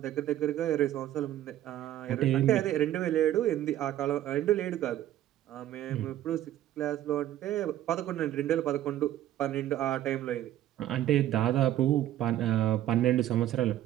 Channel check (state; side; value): quieter; left; 12.8 dB